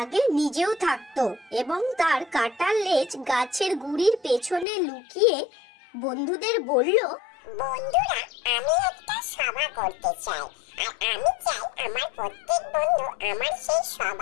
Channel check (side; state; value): right; drops out; at 4.7 s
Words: আগে নিজেও থাকতো, এবং তার কাটা লেজ গাছের গুড়ির পেছনে লুকিয়ে বন্ধুদের বলল, বন্ধুরা, আমি একটা সভা করতে চাই, আর আমি চাই আমার প্রত্যেক বন্ধু আমার সেই